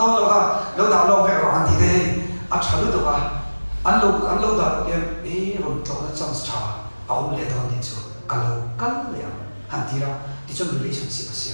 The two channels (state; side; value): inverted; both; correlation -1.00